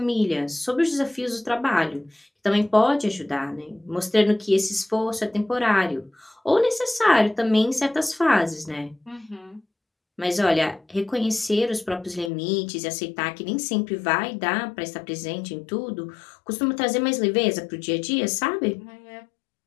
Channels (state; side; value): drops out; right; at 12.3 s